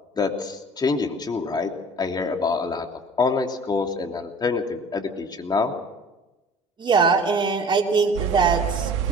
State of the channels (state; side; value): normal; both; correlation 0.45